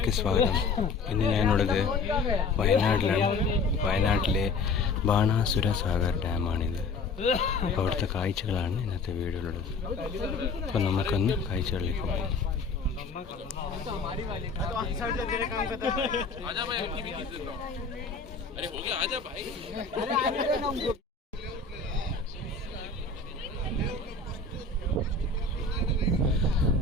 സ്വാഗതം. ഇന്ന് ഞാനുള്ളത് വയനാട്ടിലാണ്. വയനാട്ടിലെ ബാണാസുര സാഗർ ഡാമാണിത്. അപ്പോൾ അവിടുത്തെ കാഴ്ചകളാണ് ഇന്നത്തെ വീഡിയോയിലുള്ളത്. അപ്പോൾ നമുക്കൊന്ന് കാഴ്ചകളിലേക്ക് പോകാം.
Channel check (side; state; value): right; quieter; 4.1 dB